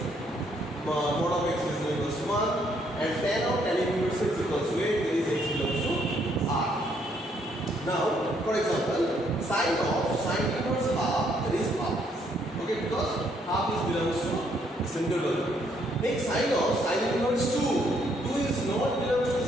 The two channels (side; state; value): both; normal; correlation 0.70